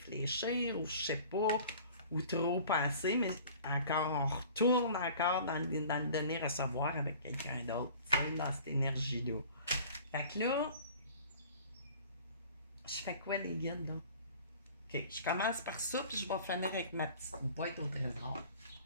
ou je sais pas, ou trop penser, mais encore, on retourne encore dans le donner-recevoir avec quelqu'un d'autre, tu sais, dans cette énergie-là. Fait que là, je fais quoi les guides, là? OK, je commence par ça, puis je vais finir avec ma petite boîte au trésor.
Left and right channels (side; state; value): both; inverted; correlation -0.46